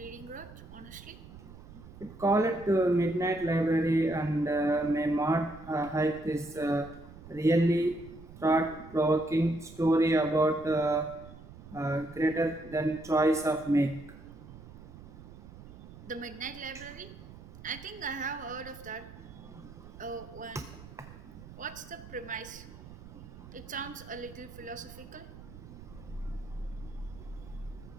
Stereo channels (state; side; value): noise; right; rumble, 17 dB below the sound